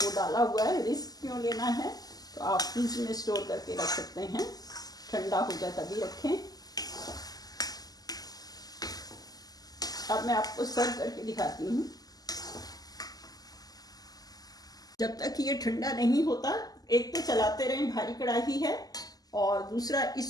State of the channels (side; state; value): right; late; 0.18 ms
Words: वो डाला हुआ है, रिस्क क्यों लेना है। तो आप फ्रिज में स्टोर करके रख सकते हैं, ठंडा हो जाए तभी रखें। अब मैं आपको सर्व करके दिखाती हूँ। जब तक ये ठंडा नहीं होता, एक तो चलाते रहें, भारी कढ़ाई है, और दूसरा